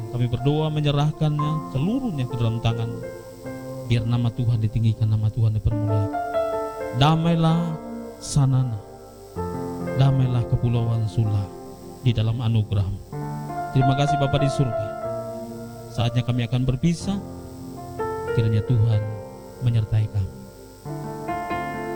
Kami berdoa menyerahkannya seluruhnya ke dalam tangan-Mu. Biar nama Tuhan ditinggikan, nama Tuhan dipermuliakan. Damailah Sanana, damailah Kepulauan Sula di dalam anugerah-Mu. Terima kasih Bapa di surga. Saatnya kami akan berpisah. Kiranya Tuhan menyertai kami.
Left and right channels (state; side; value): identical; both; correlation 1.00